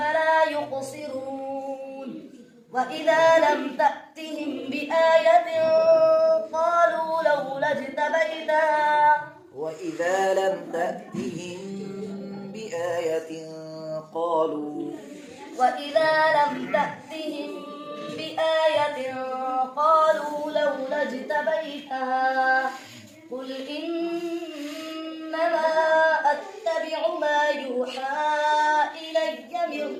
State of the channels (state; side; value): identical; both; correlation 1.00